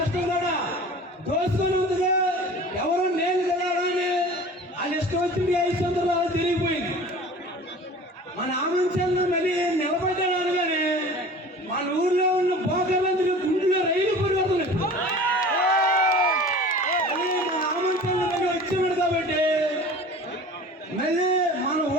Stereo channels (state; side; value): normal; both; correlation 0.41